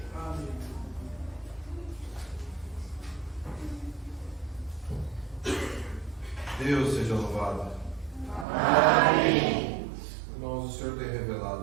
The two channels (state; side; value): drops out; left; at 8.5 s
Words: Deus seja louvado. Amém. Irmãos, o Senhor tem